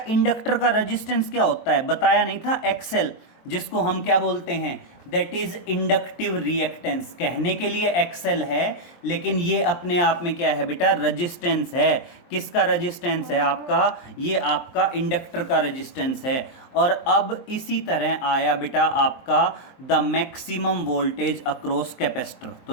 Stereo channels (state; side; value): late; right; 23 ms